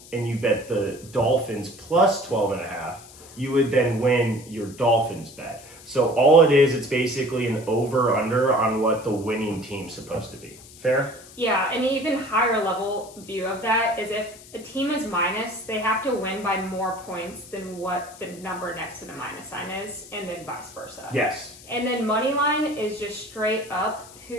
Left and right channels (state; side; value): noise; left; hiss, 20 dB below the sound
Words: and you bet the Dolphins plus 12.5, you would then win your Dolphins bet. So all it is, it's basically an over-under on what the winning team's supposed to be. Fair? Yeah, an even higher level view of that is if a team is minus, they have to win by more points than what the number next to the minus sign is, and then vice versa. Yes. And then money line is just straight up